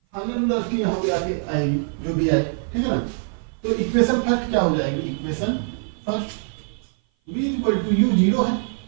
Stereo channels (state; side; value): silent; left; 56 dB below the other